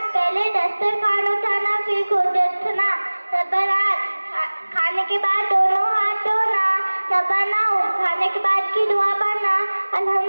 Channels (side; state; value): both; inverted; correlation -1.00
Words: पहले दस्तरखान उठाना फिर खुद उठना। नंबर 8, खाने के बाद दोनों हाथ धोना। नंबर 9, खाने के बाद की दुआ पढ़ना।